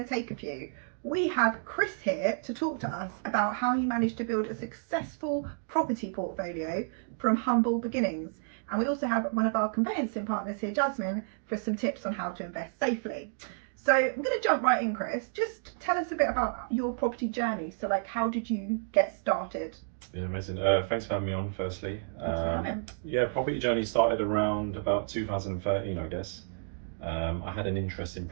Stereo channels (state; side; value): silent; left; digital silence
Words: to take a few. We have Kris here to talk to us about how he managed to build a successful property portfolio from humble beginnings. And we also have one of our conveyancing partners here, Jasmine, for some tips on how to invest safely. So I'm going to jump right in, Kris. Just tell us a bit about your property journey. So like, how did you get started? Yeah, amazing. Thanks for having me on, firstly. Thanks for having. Yeah, property journey started around about 2013, I guess. I had an interest in